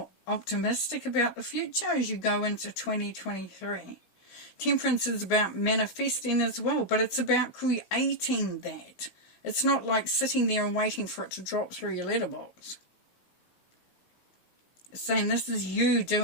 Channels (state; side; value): late; right; 16 ms